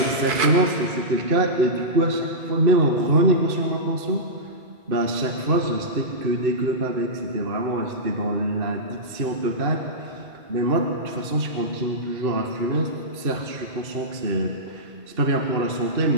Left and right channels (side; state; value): left; late; 2.6 ms